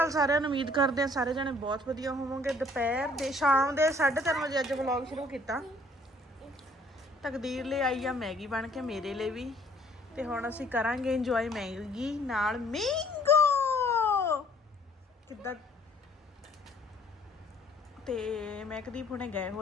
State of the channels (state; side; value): normal; both; correlation 0.59